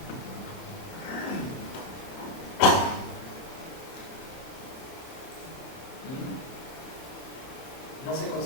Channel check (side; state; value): right; late; 30 ms